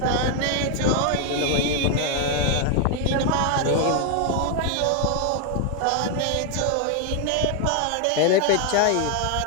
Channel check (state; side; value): different; both; correlation 0.00